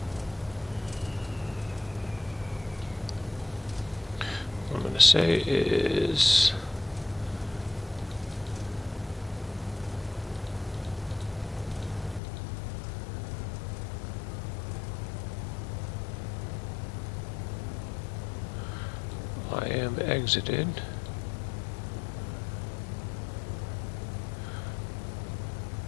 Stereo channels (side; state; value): right; drops out; at 12.2 s